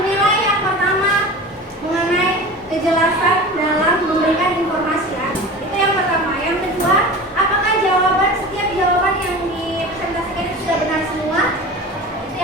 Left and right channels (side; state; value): both; normal; correlation 0.34